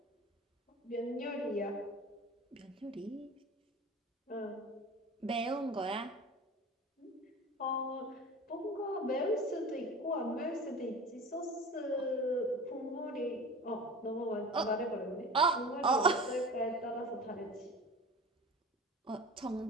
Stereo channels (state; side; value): normal; both; correlation 0.36